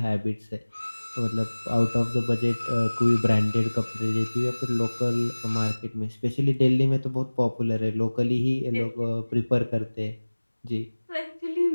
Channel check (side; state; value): both; inverted; correlation -1.00